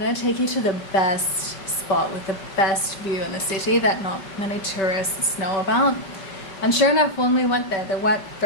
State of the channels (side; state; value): right; late; 5.2 ms